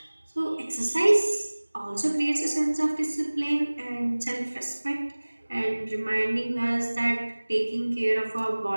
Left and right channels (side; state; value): both; inverted; correlation -1.00